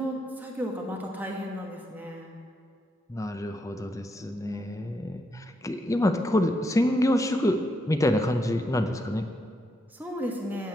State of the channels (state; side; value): normal; both; correlation 0.80